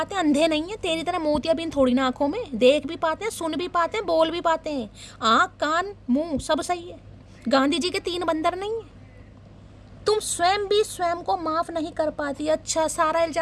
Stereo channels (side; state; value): both; identical; correlation 1.00